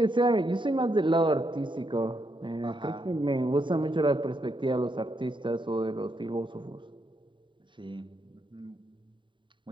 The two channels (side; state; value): left; late; 0.23 ms